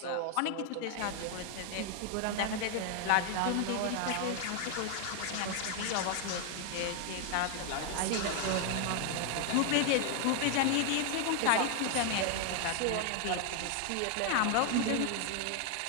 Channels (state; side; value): different; both; correlation 0.00